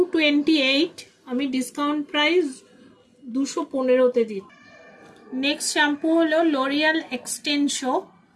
আমি ডিসকাউন্ট প্রাইস 215-তে দিই। নেক্সট শ্যাম্পু হলো লরিয়াল এক্সটেনশো।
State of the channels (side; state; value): both; identical; correlation 1.00